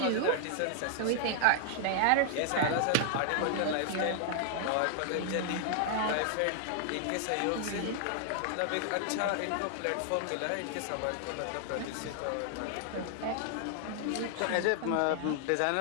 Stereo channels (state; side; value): different; both; correlation 0.00